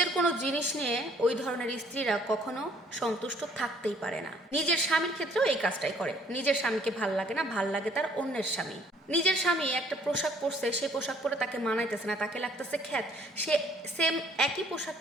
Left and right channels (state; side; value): normal; both; correlation 0.60